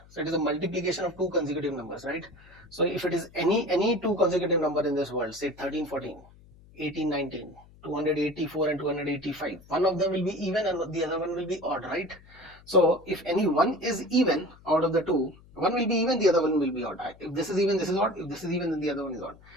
So it is a multiplication of 2 consecutive numbers, right? So if it is any 2 consecutive number in this world, say 13 14 18 19 284 and 285, one of them will be even and the other one will be odd, right? So if any one is even out of the two, one will be even, the other one will be odd. If this is even, this is odd. If this is even, then the other one is odd.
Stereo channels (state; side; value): noise; left; hum, 24 dB below the sound